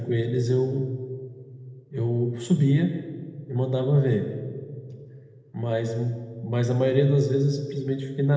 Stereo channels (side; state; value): both; identical; correlation 1.00